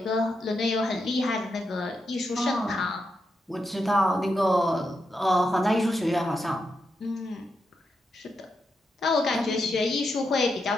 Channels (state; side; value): normal; both; correlation 0.84